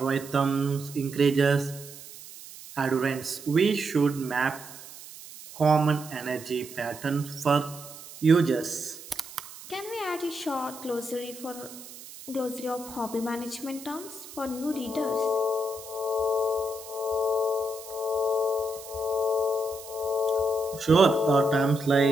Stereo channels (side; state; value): right; noise; hiss, 16 dB below the sound